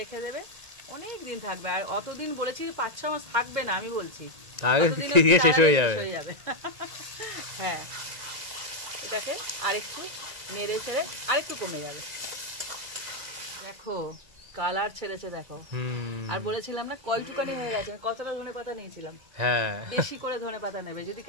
দেবে, অনেক দিন থাকবে। আর অতদিন বলেছি 5-6 মাস থাকবে না, আমি বলছি শেষ হয়ে যাবে। হ্যাঁ এটাকে আরেকটু নেড়ে ছেড়ে আরেকটু কমে যাবে। দেখো কালার ছেড়েছে, দেখো। আর বলেছিলাম না কয়টুকানি হয়ে গেছে, কতটা ধনেপাতা নিয়েছিলাম। হ্যাঁ বেশি করে ধনেপাতা নেবে, যদি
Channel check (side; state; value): left; late; 1.9 ms